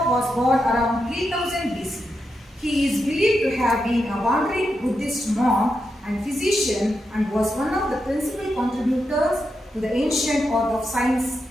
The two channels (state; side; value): normal; both; correlation 0.86